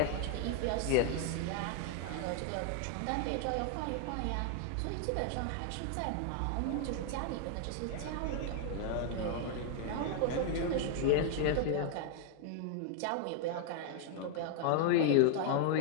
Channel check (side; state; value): both; different; correlation 0.00